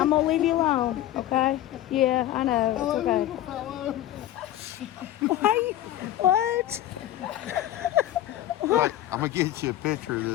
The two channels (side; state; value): right; quieter; 13.2 dB